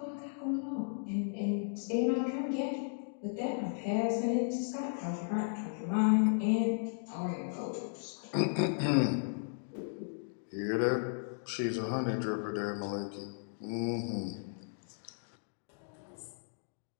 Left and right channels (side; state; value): right; silent; digital silence